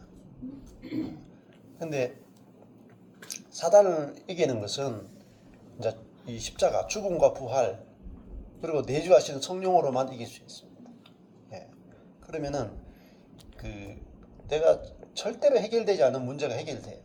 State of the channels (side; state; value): both; identical; correlation 1.00